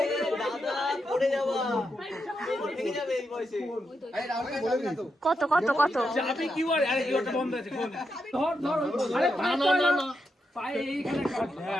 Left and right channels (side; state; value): both; normal; correlation 0.84